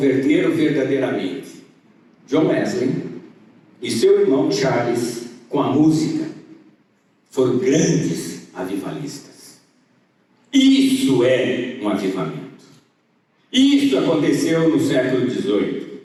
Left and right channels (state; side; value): identical; both; correlation 1.00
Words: verdadeiramente. John Wesley e seu irmão Charles, com a música, foram grandes avivalistas. Isso é um avivamento. Isso aconteceu no século XVIII.